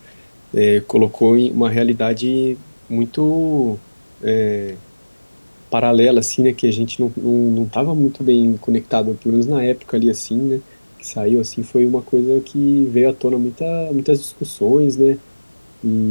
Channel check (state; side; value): inverted; both; correlation -1.00